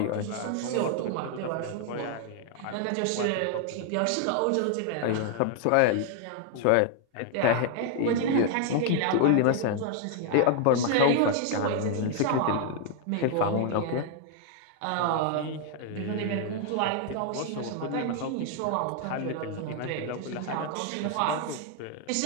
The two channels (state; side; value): different; both; correlation 0.00